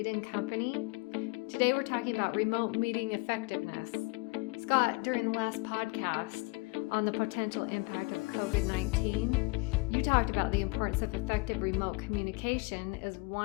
& Company. Today we're talking about remote meeting effectiveness. Scott, during the last podcast on the potential impact of COVID-19, you talked about the importance of effective remote communication as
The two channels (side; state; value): right; quieter; 26.2 dB